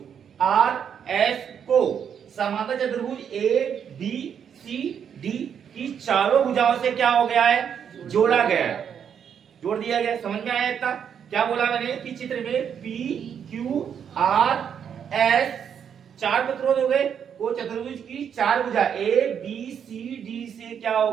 आर एस को समांतर चतुर्भुज ए बी सी डी की चारों भुजाओं से क्या हो गया है, जोड़ा गया है, जोड़ दिया गया। समझ में आया इतना? क्या बोला मैंने कि चित्र में पी क्यू आर एस चार प्रतिरोध हो गए, वो चतुर्भुज की चार भुजा ए बी सी डी से क्या हो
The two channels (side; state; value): left; quieter; 8.0 dB